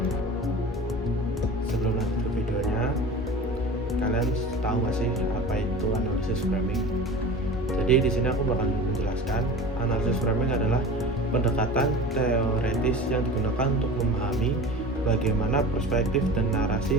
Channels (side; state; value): both; normal; correlation 0.36